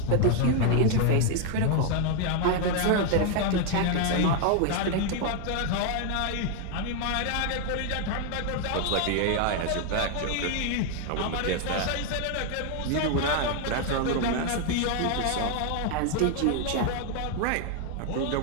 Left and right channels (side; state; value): both; different; correlation 0.00